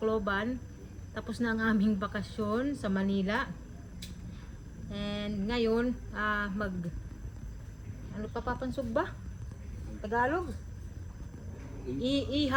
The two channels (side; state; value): both; identical; correlation 1.00